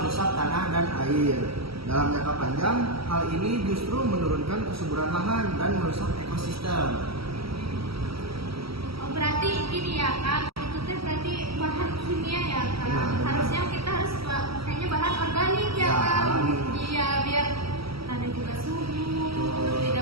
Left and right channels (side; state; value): left; late; 0.76 ms